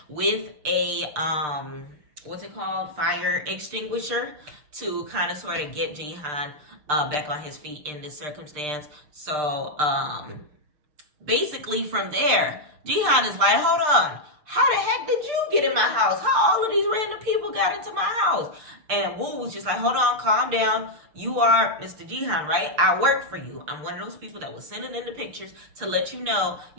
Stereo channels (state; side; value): late; left; 6.6 ms